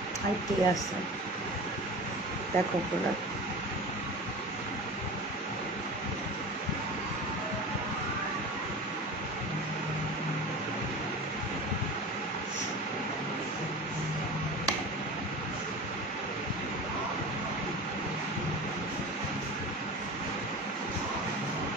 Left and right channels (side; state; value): both; normal; correlation 0.33